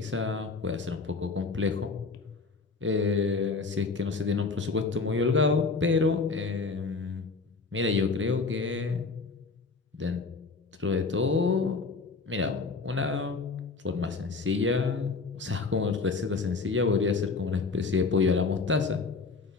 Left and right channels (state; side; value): quieter; right; 4.3 dB